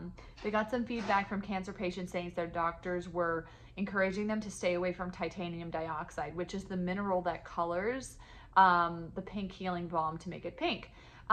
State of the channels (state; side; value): identical; both; correlation 1.00